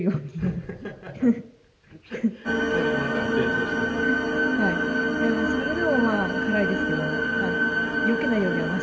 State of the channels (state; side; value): identical; both; correlation 1.00